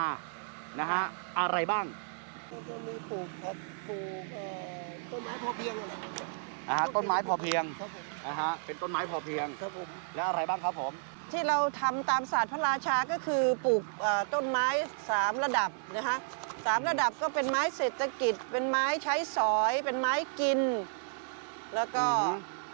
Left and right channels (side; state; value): left; silent; digital silence